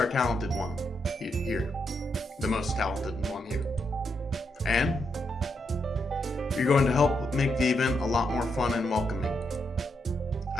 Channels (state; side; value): normal; both; correlation 0.81